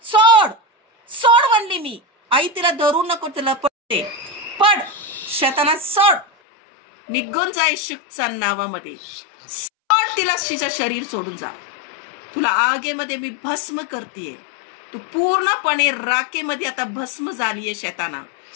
सोड, सोड म्हणली मी. आई तिला धरू नको, तिला पडते. पड शैताना, सोड, निघून जा येशूच्या नावामध्ये. सोड तिला. तिचं शरीर सोडून जा. तुला आगेमध्ये मी भस्म करतेय. तू पूर्णपणे राखेमध्ये आता भस्म झालीये. शैताना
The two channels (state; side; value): drops out; right; at 6.2 s